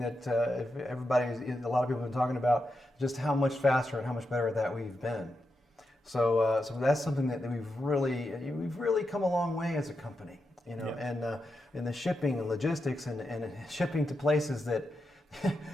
if a lot of people have been talking about, just how much faster and how much better that we've been. So that's something that we've really come a long way as a company, you know, Yeah. and in the shipping and logistics and shipping to places that,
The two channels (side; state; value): both; normal; correlation 0.87